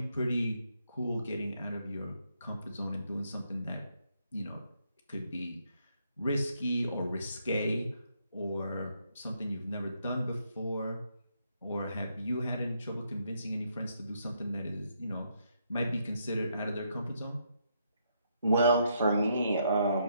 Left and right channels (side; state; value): both; inverted; correlation -0.75